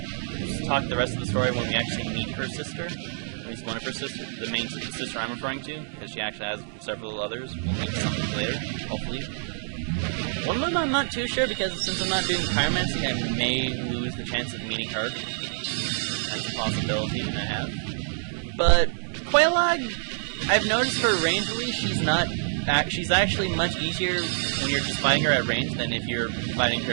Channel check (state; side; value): silent; left; 60 dB below the other